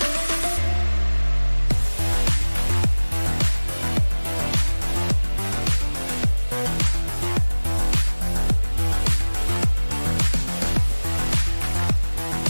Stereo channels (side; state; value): both; inverted; correlation -1.00